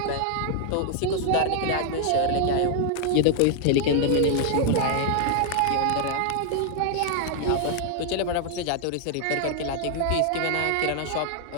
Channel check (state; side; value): different; both; correlation 0.00